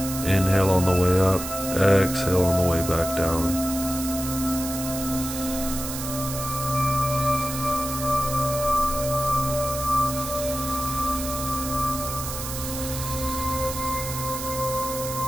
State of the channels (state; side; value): noise; right; hiss, 7 dB below the sound